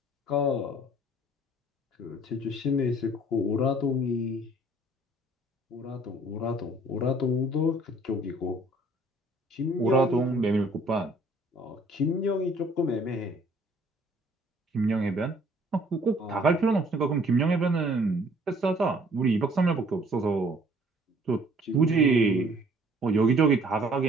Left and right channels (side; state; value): both; normal; correlation 0.57